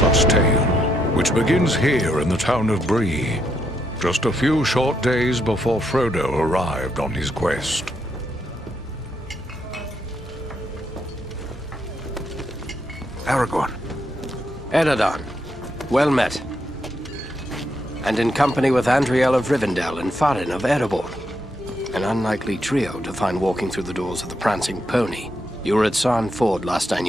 tale, which begins here in the town of Bree, just a few short days before Frodo arrived on his quest. Aragorn. Eredon, well met. And in company with Andriel of Rivendell and Farin of Erebor. An unlikely trio to find walking through the doors of the Prancing Pony. You were at Sarn Ford last I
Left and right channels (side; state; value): both; normal; correlation 0.78